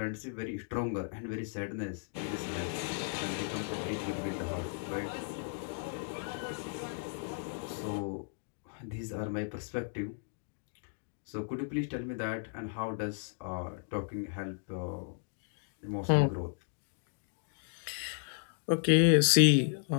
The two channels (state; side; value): silent; right; digital silence